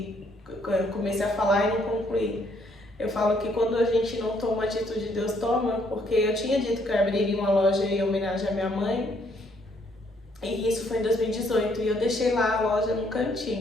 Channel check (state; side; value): normal; both; correlation 0.68